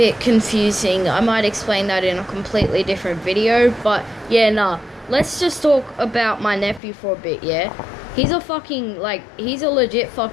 confusing. I might explain that in a completely different video, but yeah, nah. Let's just talk about my nephew for a bit, yeah? He's a legit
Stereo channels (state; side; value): drops out; right; at 6.8 s